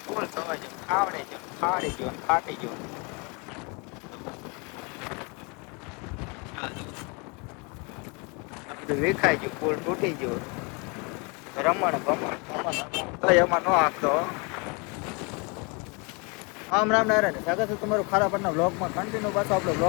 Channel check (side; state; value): right; quieter; 31.3 dB